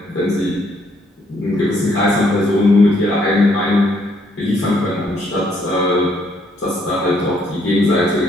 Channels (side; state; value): both; normal; correlation 0.69